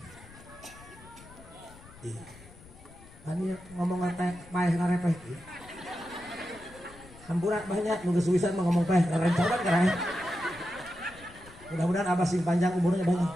Ani ngomong teh paeh ngarepeh ieu. Hampura banyak nu geus wisan mah ngomong paeh ngarencoban kareh. Mudah-mudahan Abah sing panjang umurnya banyak.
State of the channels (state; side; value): noise; left; rumble, 21 dB below the sound